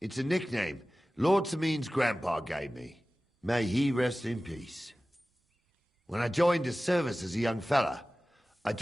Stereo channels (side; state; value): both; normal; correlation 0.97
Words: a nickname Lord Seming's grandpa gave me. May he rest in peace. When I joined his service as a young fella, I